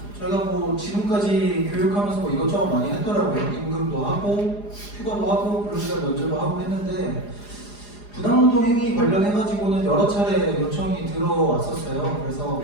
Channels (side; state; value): right; late; 4.9 ms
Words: 저희가 지금까지 교육하면서 이것저것 많이 했더라고요. 임금도 하고 휴가도 하고 근로시간 면제도 하고 했는데 부당노동 행위 관련해가지고는 여러 차례 요청이 들어왔었어요. 그래서